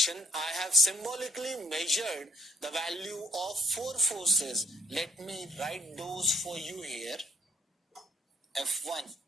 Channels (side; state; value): both; normal; correlation 0.62